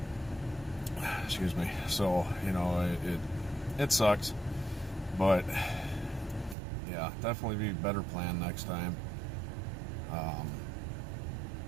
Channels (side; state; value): left; drops out; at 6.6 s